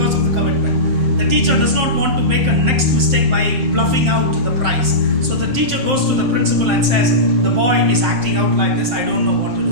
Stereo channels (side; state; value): left; late; 7.6 ms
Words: of the commitment. The teacher does not want to make a next mistake by bluffing out the price. So the teacher goes to the principal and says, the boy is acting out like this, I don't know what to